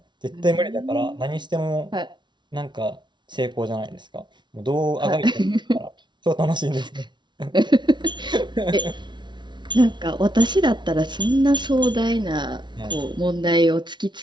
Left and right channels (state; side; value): late; left; 0.22 ms